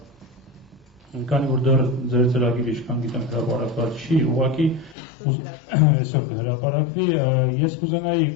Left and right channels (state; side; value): drops out; right; at 5.0 s